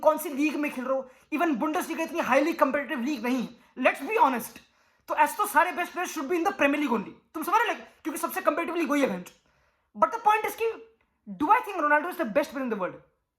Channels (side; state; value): both; identical; correlation 1.00